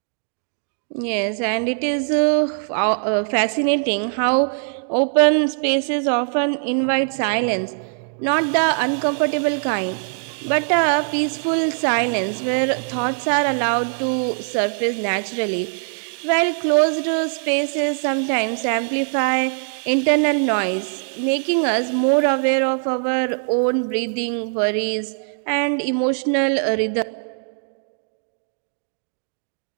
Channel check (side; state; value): left; silent; 65 dB below the other